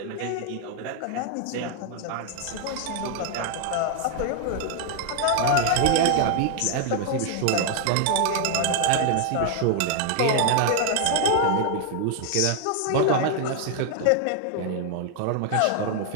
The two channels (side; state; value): both; different; correlation 0.00